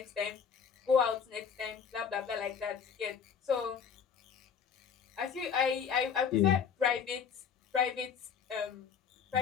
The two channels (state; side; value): quieter; right; 7.1 dB